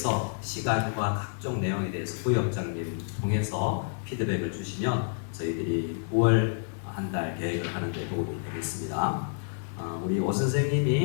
시간과 각종 내용에 대해서 부역장님 통해서 피드백을 주시면 저희들이 9월 한 달 계획을 하는 데 도움이 되겠습니다. 우리 오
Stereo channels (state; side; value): silent; right; digital silence